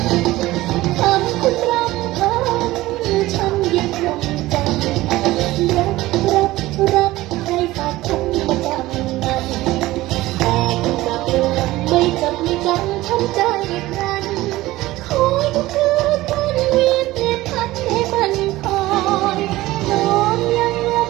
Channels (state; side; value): quieter; left; 17.6 dB